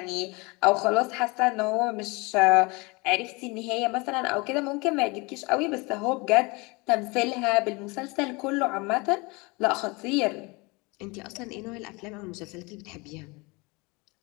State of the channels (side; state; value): right; quieter; 26.5 dB